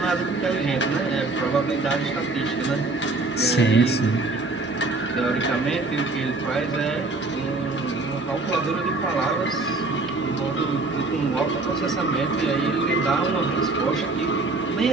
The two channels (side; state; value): left; quieter; 3.3 dB